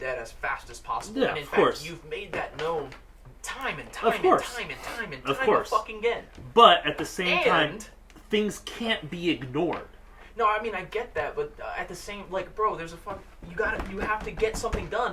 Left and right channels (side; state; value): both; identical; correlation 1.00